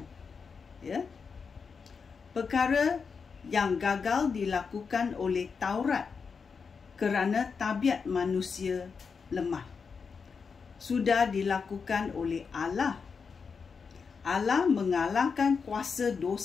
Perkara yang gagal dilakukan oleh Taurat kerana tabiat manusia lemah. Sudah dilakukan oleh Allah. Allah mengalahkan kuasa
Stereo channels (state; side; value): quieter; right; 5.5 dB